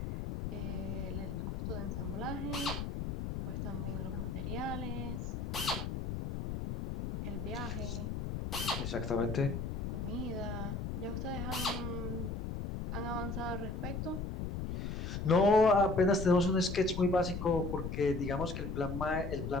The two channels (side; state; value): left; noise; rumble, 4 dB below the sound